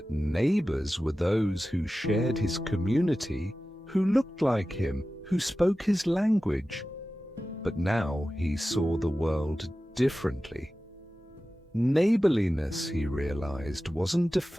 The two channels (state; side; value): normal; both; correlation 0.95